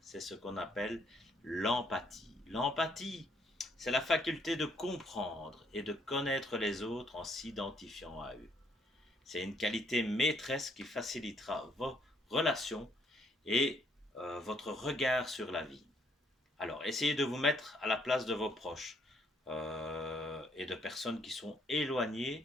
c'est ce qu'on appelle l'empathie. L'empathie, c'est la faculté de comprendre et de connaître les autres en s'identifiant à eux. C'est une qualité maîtresse qui facilitera vos relations et votre regard sur la vie. Alors, essayez de vous mettre à la place de vos proches et de personnes qui sont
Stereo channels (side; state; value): both; normal; correlation 0.69